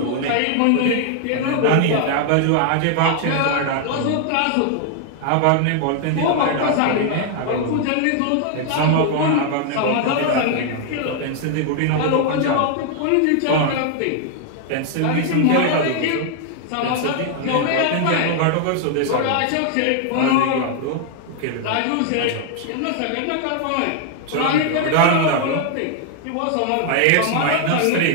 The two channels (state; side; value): different; both; correlation 0.00